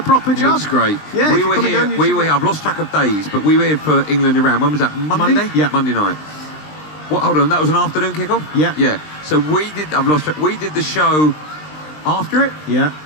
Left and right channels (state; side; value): late; right; 20 ms